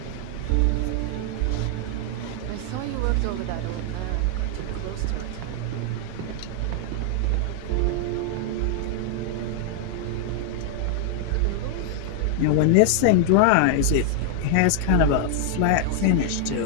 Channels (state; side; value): different; both; correlation 0.00